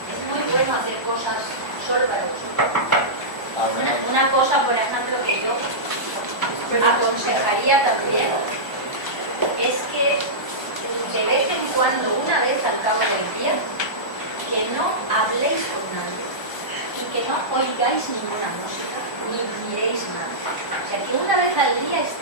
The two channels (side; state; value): right; late; 1.2 ms